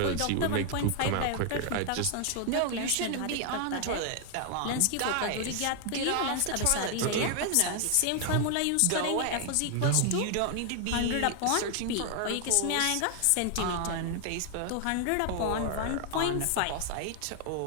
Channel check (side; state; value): both; different; correlation 0.00